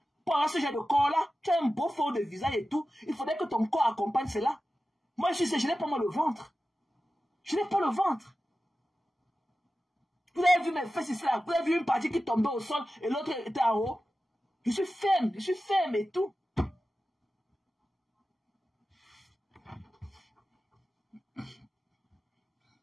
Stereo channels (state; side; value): normal; both; correlation 0.93